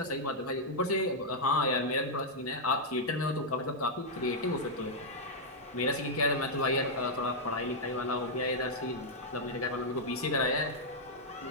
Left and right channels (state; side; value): normal; both; correlation -0.05